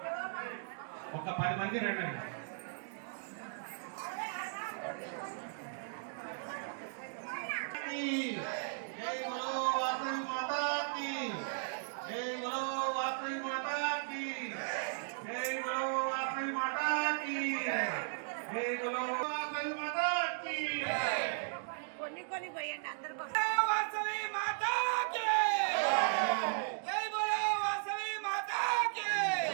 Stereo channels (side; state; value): left; silent; digital silence